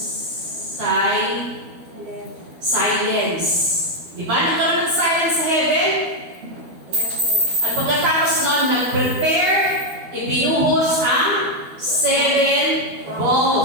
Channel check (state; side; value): late; left; 12 ms